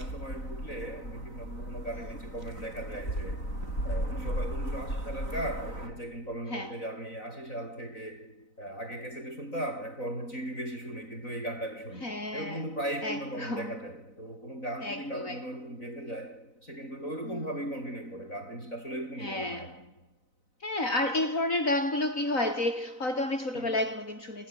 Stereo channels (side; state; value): right; late; 4.0 ms